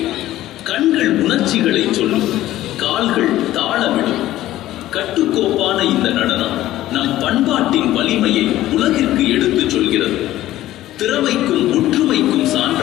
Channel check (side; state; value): right; quieter; 14.6 dB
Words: கண்கள் உணர்ச்சிகளை சொல்லும், கால்கள் தாளமிடும். கட்டுக்கோப்பான இந்த நடனம் நம் பண்பாட்டின் வலிமையை உலகிற்கு எடுத்துச் சொல்கிறது. திறமைக்கும் ஒற்றுமைக்கும்